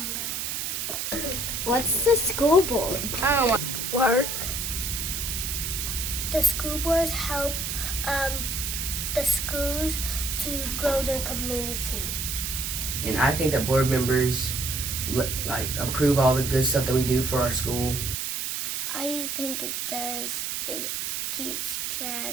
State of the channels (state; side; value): noise; right; hiss, 2 dB below the sound